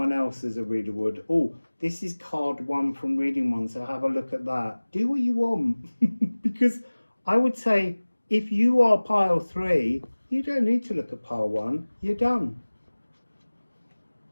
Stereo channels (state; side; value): inverted; both; correlation -1.00